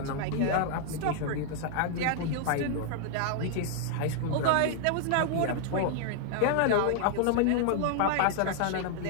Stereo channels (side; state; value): both; different; correlation 0.00